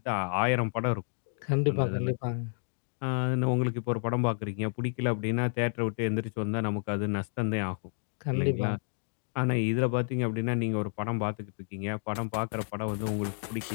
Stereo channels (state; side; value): silent; right; digital silence